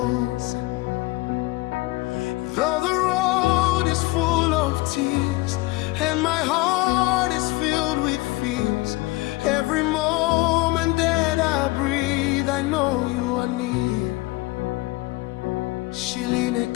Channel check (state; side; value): quieter; right; 21.3 dB